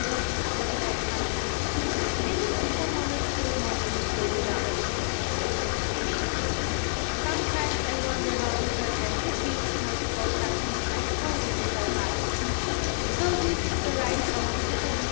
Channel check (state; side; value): silent; right; digital silence